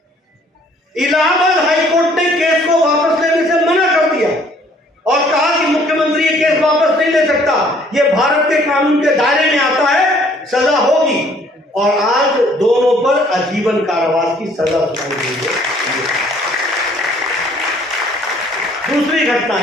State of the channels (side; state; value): both; normal; correlation 0.60